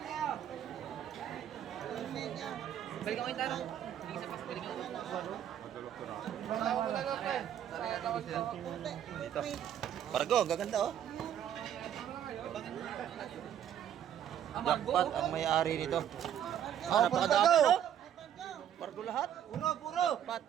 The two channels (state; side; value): quieter; left; 10.1 dB